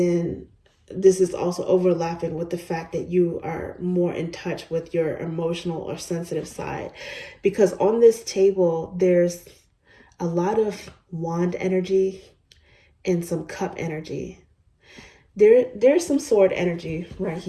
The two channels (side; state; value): both; identical; correlation 1.00